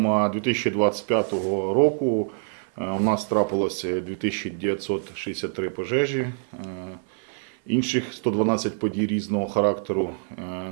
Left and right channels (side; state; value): left; silent; 56 dB below the other